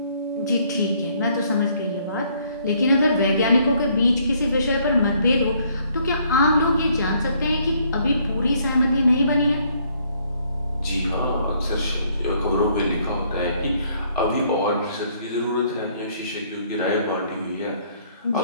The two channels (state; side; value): inverted; both; correlation -0.66